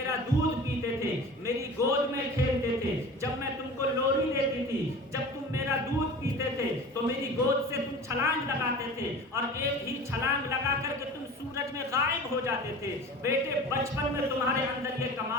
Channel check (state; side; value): normal; both; correlation 0.37